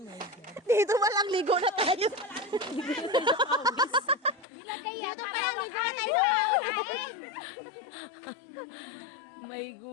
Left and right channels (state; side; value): drops out; right; at 4.5 s